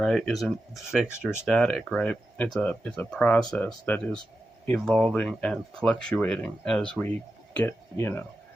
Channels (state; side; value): normal; both; correlation 0.91